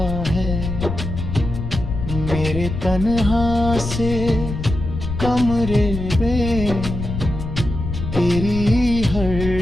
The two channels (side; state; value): left; noise; rumble, 5 dB below the sound